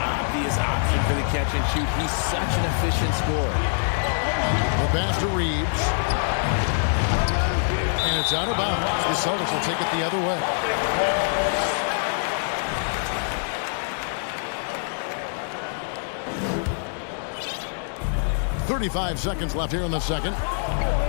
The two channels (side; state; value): right; silent; digital silence